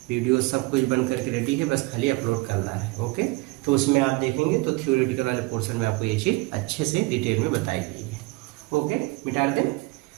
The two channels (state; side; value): quieter; left; 23.2 dB